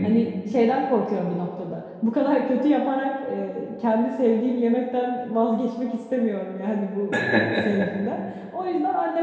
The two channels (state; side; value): identical; both; correlation 1.00